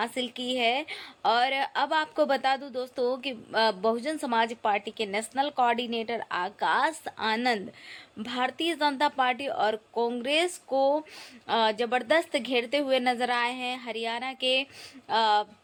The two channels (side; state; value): both; identical; correlation 1.00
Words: की है। और अब आपको बता दूं दोस्तों कि बहुजन समाज पार्टी के national coordinator Akash Anand Bharatiya Janata party और कांग्रेस को जबरदस्त घेरते हुए नजर आए हैं।